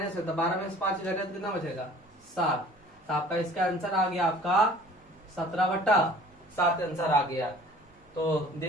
है तो 12 में से 5 जाएगा तो कितना बचेगा 7। तो आपका इसका आंसर आ गया आपका 17/7 आंसर आ गया। तो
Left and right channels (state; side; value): normal; both; correlation 0.49